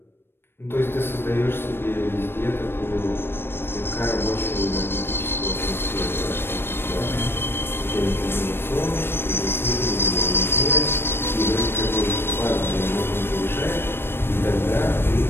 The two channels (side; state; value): right; late; 0.11 ms